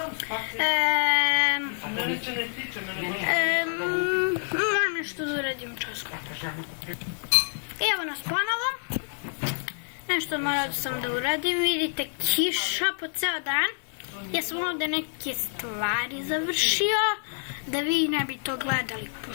Moram nešto da uradim časko. Evo nas ponovo. Nešto morao sam da uradim. Vidite, kiša po ceo dan. Ja sam ovdje neke stvari završio, da vi ne bi to gledali,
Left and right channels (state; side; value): silent; right; digital silence